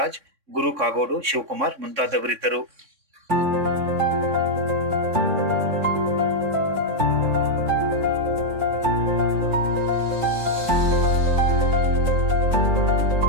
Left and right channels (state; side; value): late; left; 3.6 ms